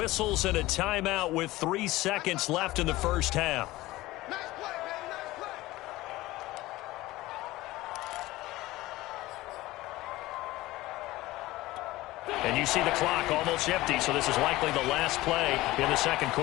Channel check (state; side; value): quieter; right; 18.2 dB